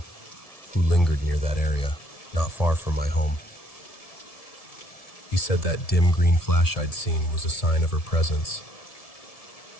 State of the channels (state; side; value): late; right; 1.7 ms